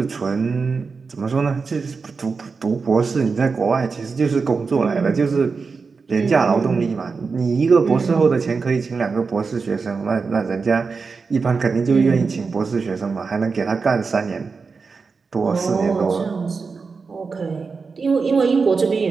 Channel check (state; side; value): quieter; left; 4.8 dB